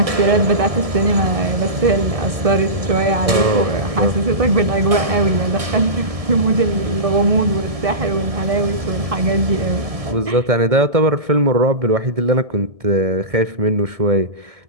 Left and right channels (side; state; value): left; late; 1.7 ms